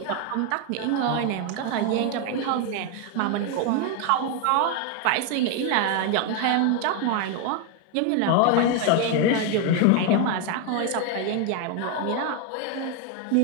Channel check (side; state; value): both; different; correlation 0.01